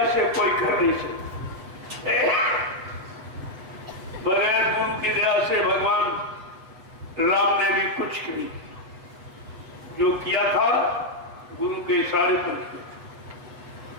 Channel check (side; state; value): left; late; 8.1 ms